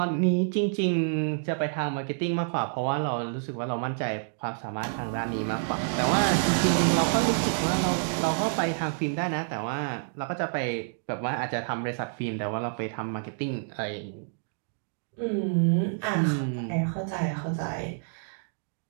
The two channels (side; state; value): left; silent; digital silence